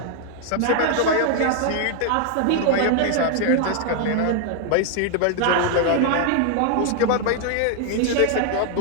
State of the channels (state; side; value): different; both; correlation 0.00